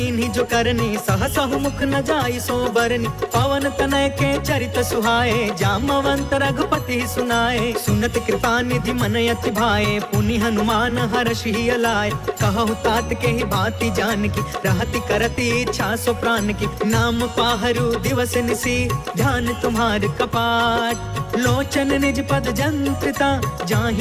जो करनी, सहसहु मुख न जाई सो बरनी। पवन तनय के चरित सुहाए, जामवंत रघुपति सुनाए। सुनत कृपा निधि मन अति भाए, पुनि हनुमान हर्षि अलाए। कहु तात के ही भांति जान की, रहति करति इच्छा सो प्राण की। नाम पाहरु दिवस निसी, ध्यान तुम्हार कपाट। लोचन निज पद जंत्रिता, जाहि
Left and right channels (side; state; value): both; identical; correlation 1.00